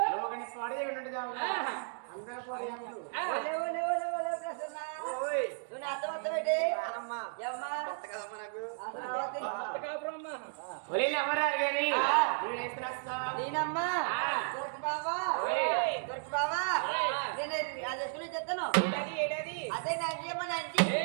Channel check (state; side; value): silent; left; digital silence